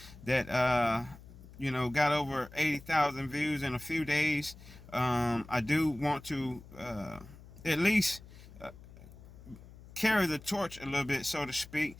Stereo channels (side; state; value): left; noise; hum, 19 dB below the sound